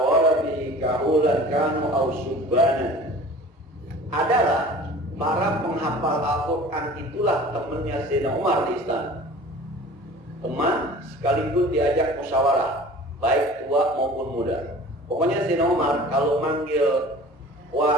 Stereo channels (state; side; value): normal; both; correlation 0.43